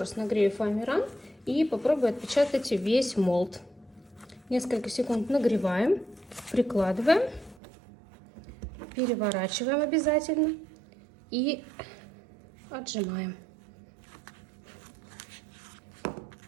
нагрею фоамиран и попробую отпечатать весь молд. Несколько секунд нагреваем, прикладываем, переворачиваем обязательно и отжимаем.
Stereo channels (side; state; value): left; drops out; at 7.6 s